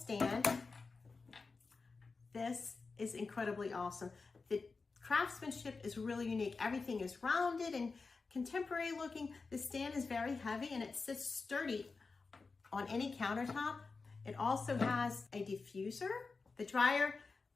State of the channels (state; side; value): quieter; right; 4.3 dB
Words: This is incredibly awesome. The craftsmanship is really unique. Everything is rounded and contemporary looking. The stand is very heavy and it sits sturdy on any countertop. It also has a diffuser, the dryer,